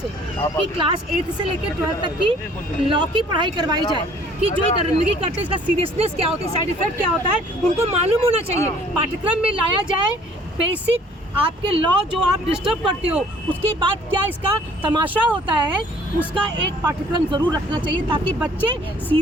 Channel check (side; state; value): both; normal; correlation 0.56